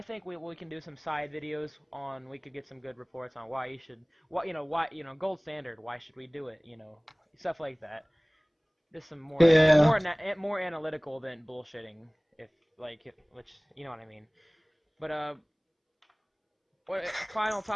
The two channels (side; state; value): both; identical; correlation 1.00